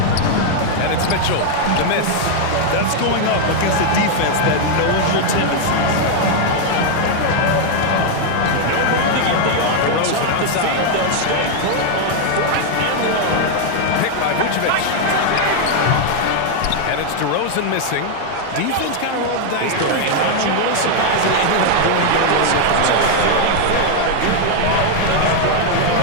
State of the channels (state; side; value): different; both; correlation 0.00